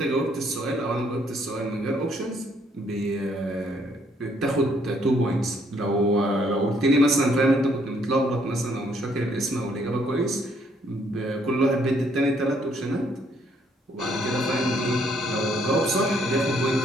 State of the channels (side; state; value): both; normal; correlation 0.68